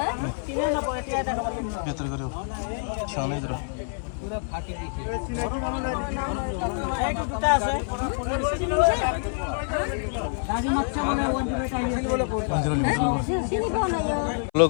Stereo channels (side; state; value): right; silent; 59 dB below the other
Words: बेटारि गारियाव थिखांना नायदों